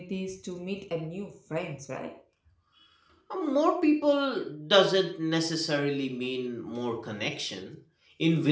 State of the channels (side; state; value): both; identical; correlation 1.00